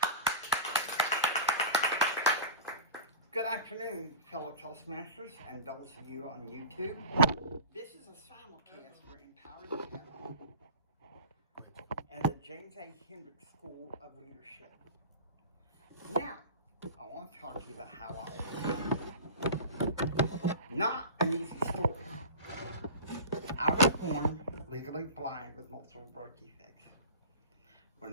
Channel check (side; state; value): both; inverted; correlation -0.34